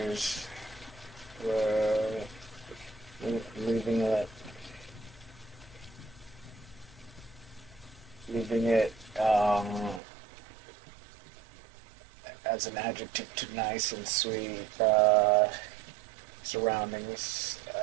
were leaving it as an adjective to nice and sweet surroundings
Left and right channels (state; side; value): drops out; left; at 10.0 s